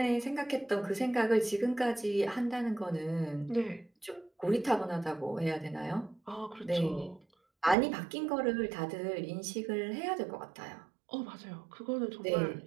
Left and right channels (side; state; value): left; drops out; at 7.8 s